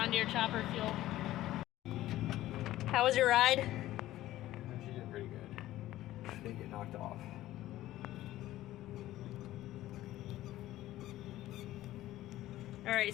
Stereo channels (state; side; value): quieter; right; 14.9 dB